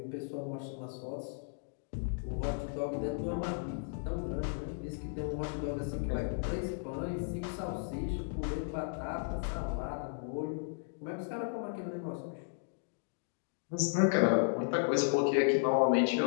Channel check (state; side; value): silent; right; digital silence